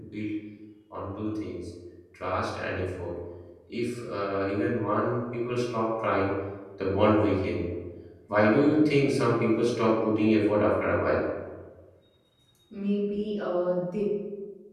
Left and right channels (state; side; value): identical; both; correlation 1.00